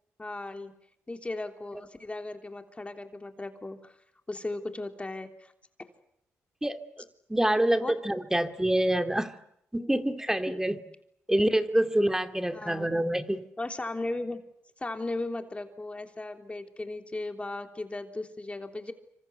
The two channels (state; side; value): normal; both; correlation 0.97